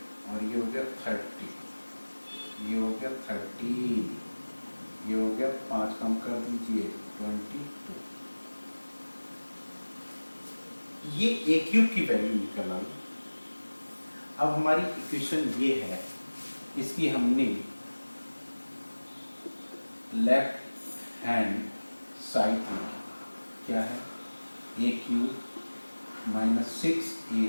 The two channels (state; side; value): inverted; both; correlation -1.00